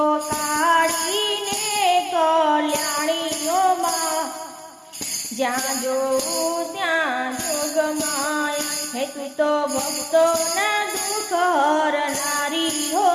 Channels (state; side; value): identical; both; correlation 1.00